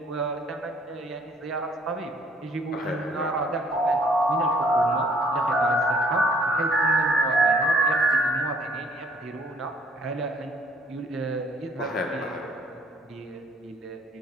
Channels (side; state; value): both; normal; correlation 0.60